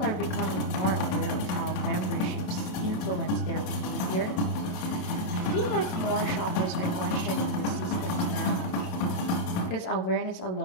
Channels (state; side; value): late; right; 28 ms